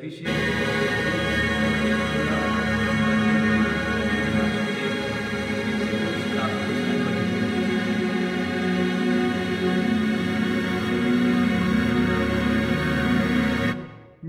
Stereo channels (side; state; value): both; identical; correlation 1.00